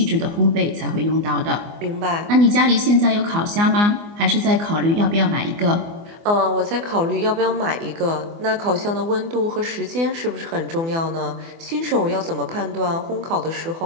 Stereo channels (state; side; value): late; left; 24 ms